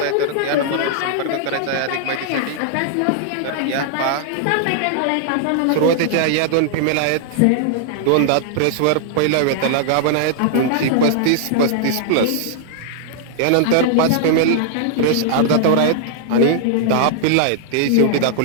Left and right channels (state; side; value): different; both; correlation -0.01